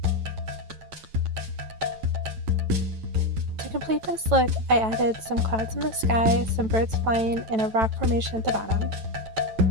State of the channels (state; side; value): late; left; 9.1 ms